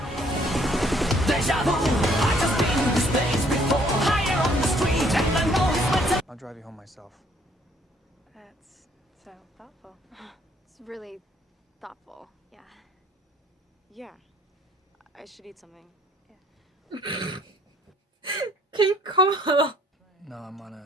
I'll drive you home myself. That's so thoughtful. It's really thoughtful. Yeah. Yeah. I should eat something. Qué incómodo. No, I'm on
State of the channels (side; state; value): both; normal; correlation 0.62